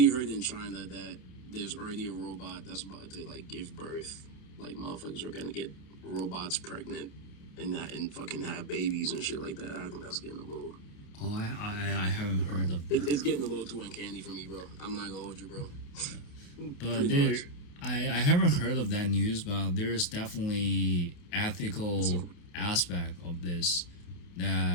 heard in China that there's already a robot that's about to like give birth. Like motherfuckers are gonna get robots pregnant and that and fucking have babies and shit like that. I think that's getting a little. Oh, I haven't heard of that. It's getting a little too uncanny for me, bro. I'm not gonna hold you, bro. But there, I haven't heard of that news, but there's definitely ethical aspect of this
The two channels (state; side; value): late; right; 29 ms